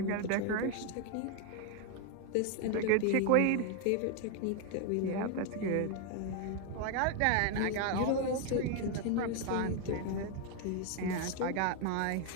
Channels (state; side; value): different; both; correlation 0.01